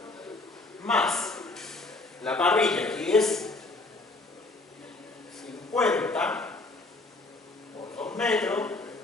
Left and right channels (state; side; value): quieter; right; 3.2 dB